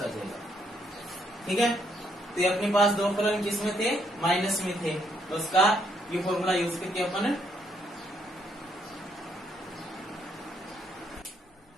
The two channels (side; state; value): both; normal; correlation 0.72